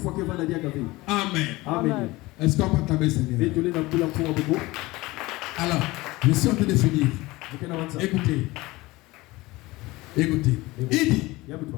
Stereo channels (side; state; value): right; quieter; 20.6 dB